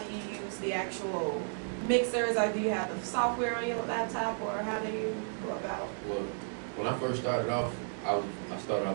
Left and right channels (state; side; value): silent; left; digital silence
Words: Do you use the actual mixers? Or do you have the software on your laptop? Or how do you go about? Well, when I first started off, I started